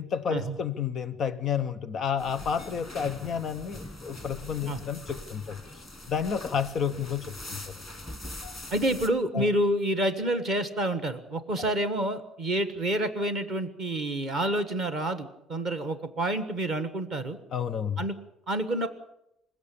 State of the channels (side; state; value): both; normal; correlation 0.46